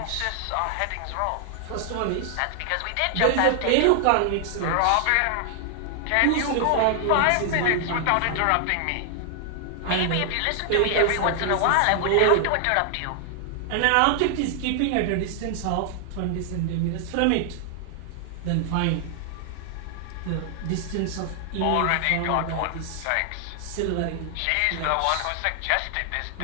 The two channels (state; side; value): different; both; correlation 0.00